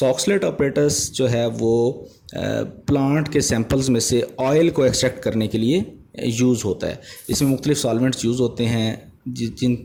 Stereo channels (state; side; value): identical; both; correlation 1.00